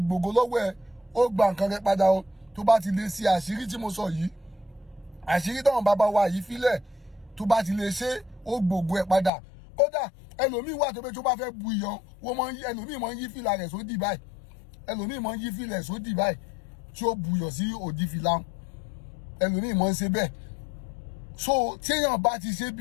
gbògo lọ́wọ́ ẹ ó gba nǹkan rẹ padà o tó bá ti lè ṣe àṣírí tí mo sọ yìí àṣírí táwọn bàbá wa yìí fílẹ̀ tó bá ti lè ṣe ó gbògo ẹ padà kódà ẹlòmíì wà tó pé tó bá fẹ́ bu iyọ̀ ẹlòmíì máa ń yí fìlà rẹ̀ sódì báyìí tí ó bu iyọ̀ sí òdì fìlà ẹlòmíì máa ń ṣe bẹ́ẹ̀ so téèyàn bá ti ṣe bí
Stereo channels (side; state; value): right; drops out; at 9.3 s